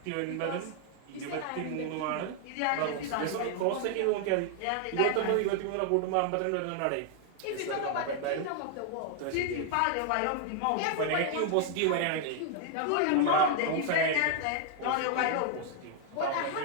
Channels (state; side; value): different; both; correlation 0.00